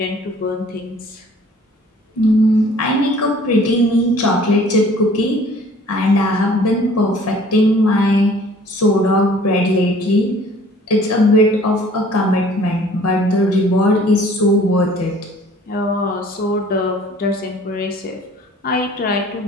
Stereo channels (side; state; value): both; normal; correlation 0.53